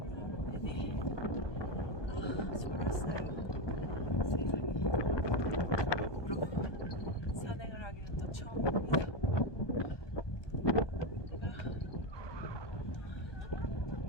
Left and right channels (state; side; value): late; right; 1.2 ms